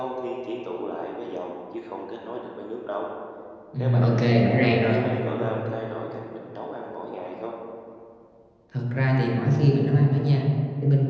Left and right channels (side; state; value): both; identical; correlation 1.00